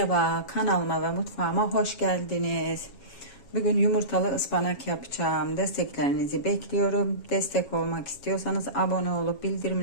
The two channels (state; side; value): late; right; 7.3 ms